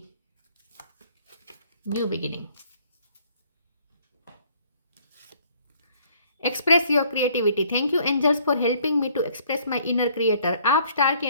new beginning. Express your creativity, thank you angels for helping me to express my inner creator. आप स्टार की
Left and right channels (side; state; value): both; inverted; correlation -0.60